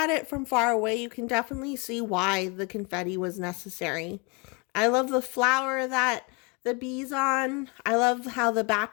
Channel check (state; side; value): quieter; right; 29.6 dB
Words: it from far away, you can definitely see why the confetti was necessary. I love the flower that the bees on. I love how the